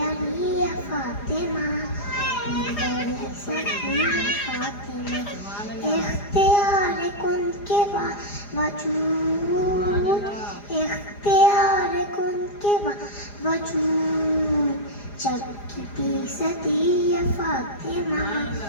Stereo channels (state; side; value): late; right; 4.9 ms